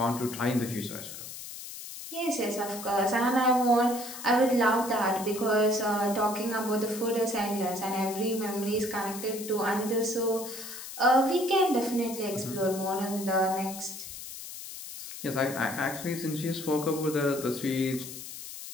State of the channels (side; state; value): left; noise; hiss, 11 dB below the sound